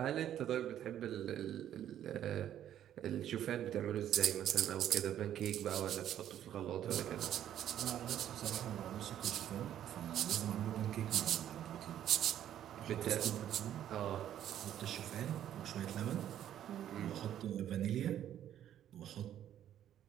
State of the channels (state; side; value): quieter; left; 11.0 dB